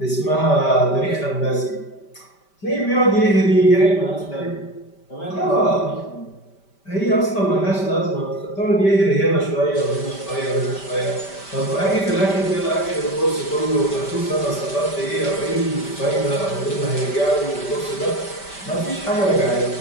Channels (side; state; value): right; late; 5.1 ms